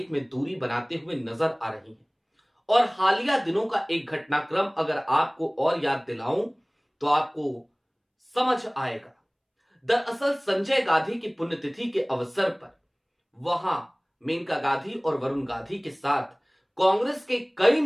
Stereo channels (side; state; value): both; identical; correlation 1.00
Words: में दूरी बनाते हुए नजर आ रही हैं। और हालिया दिनों का एक घटनाक्रम अगर आपको और याद दिलाऊं तो आपको समझ आएगा। दरअसल संजय गांधी की पुण्यतिथि के अवसर पर वहां मेनका गांधी और वरुण गांधी के साथ कांग्रेस के कई